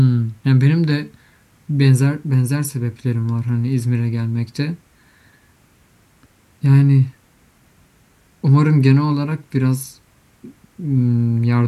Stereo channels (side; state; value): both; identical; correlation 1.00